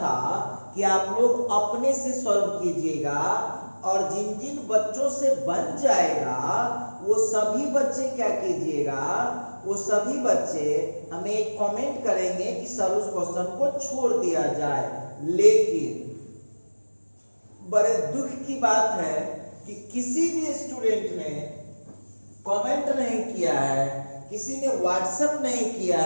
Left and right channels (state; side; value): inverted; both; correlation -1.00